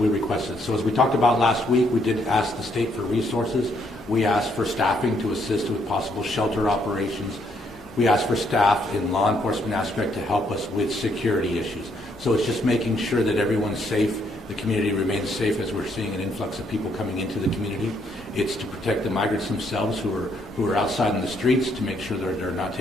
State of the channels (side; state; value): both; normal; correlation 0.72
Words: requested. So as we talked about last week, we did ask the state for resources. We asked for staffing to assist with possible shelter operations. We asked for staff in law enforcement aspect to help us with security issues. So it's just making sure that everyone's safe, the community remains safe as we're seeing an influx of people coming into the community. It's to protect the migrants themselves who are outside in the streets, to make sure they're not